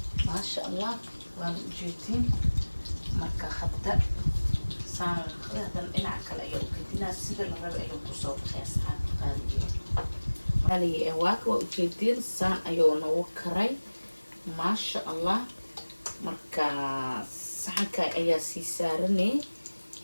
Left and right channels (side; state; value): both; inverted; correlation -1.00